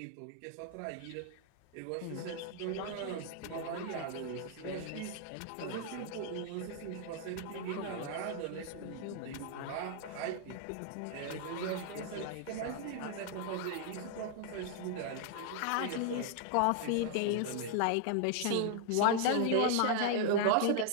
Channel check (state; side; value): different; both; correlation 0.00